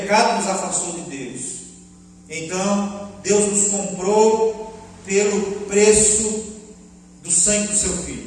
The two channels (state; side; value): identical; both; correlation 1.00